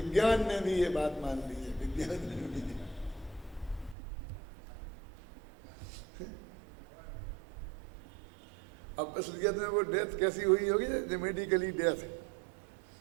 ने भी ये बात मान ली है, विज्ञान ने भी। अब असलियत में वो डेथ कैसी हुई होगी? जो मेडिकली डेथ,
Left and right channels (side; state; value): left; drops out; at 4.0 s